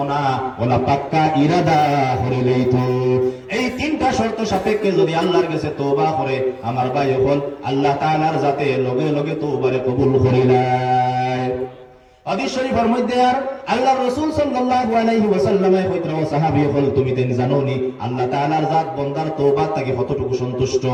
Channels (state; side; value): identical; both; correlation 1.00